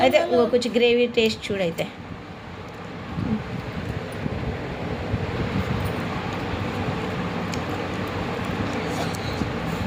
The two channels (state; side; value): identical; both; correlation 1.00